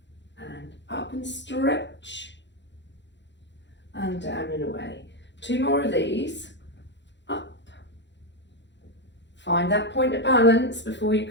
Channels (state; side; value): late; right; 0.52 ms